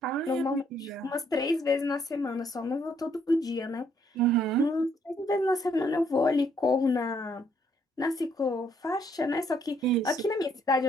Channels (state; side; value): normal; both; correlation 0.69